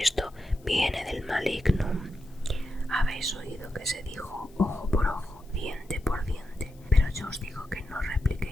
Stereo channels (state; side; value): noise; left; hiss, 29 dB below the sound